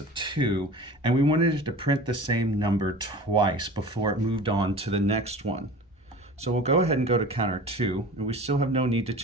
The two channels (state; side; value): normal; both; correlation 0.38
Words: of 2, and we wanted it to print the same number twice before it moved on to the next one. So we'll go ahead and go to counter 2, and we still have no need to